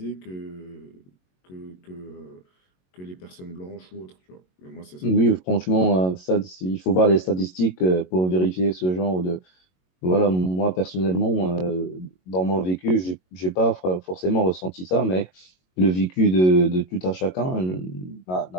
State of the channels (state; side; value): late; right; 22 ms